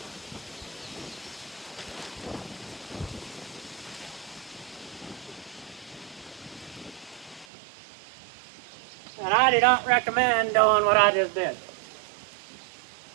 And I do not recommend doing what I just did.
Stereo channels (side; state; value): left; drops out; at 7.5 s